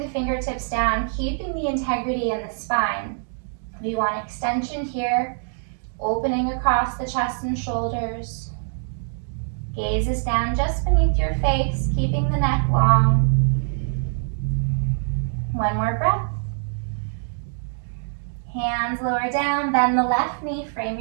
fingertips down, keeping the integrity in the spine. We want extension here, opening across the chest and shoulders. Gaze is down just beneath your face, keeping the neck long. One more breath. Hands lower down, bend the left knee, frame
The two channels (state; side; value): silent; left; 63 dB below the other